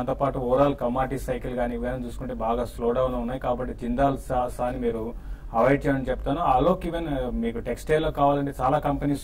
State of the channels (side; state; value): both; identical; correlation 1.00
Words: పాటు ఓవరాల్ కమాడిటీ సైకిల్ కానీ ఇవన్నీ చూసుకుంటే బాగా స్లో డౌన్ ఉన్నాయి. కాబట్టి జిందాల్ సాని మీరు అవాయిడ్ చేయమని చెప్తాను. అలోక్ ఈవెన్ మీకు టెక్స్టైల్ లో కావాలంటే చాలా